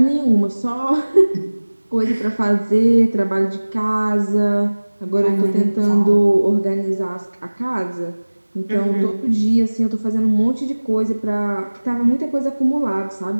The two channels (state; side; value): inverted; both; correlation -1.00